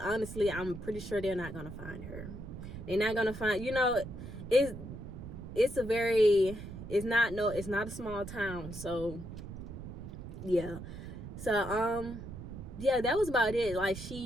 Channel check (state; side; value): noise; right; rumble, 10 dB below the sound